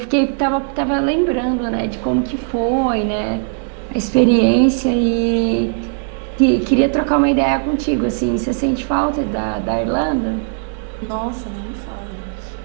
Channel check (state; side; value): silent; left; 59 dB below the other